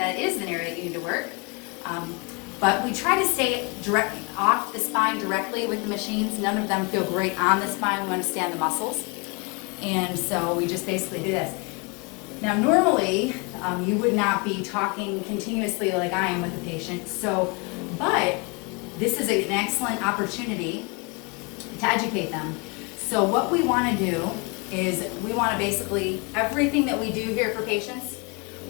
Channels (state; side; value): quieter; right; 30.2 dB